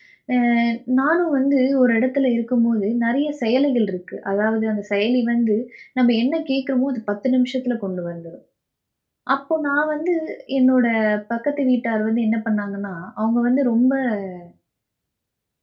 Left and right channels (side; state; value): both; identical; correlation 1.00